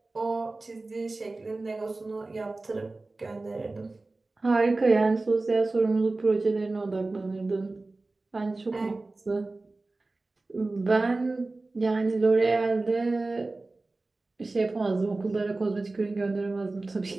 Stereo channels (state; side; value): quieter; left; 3.2 dB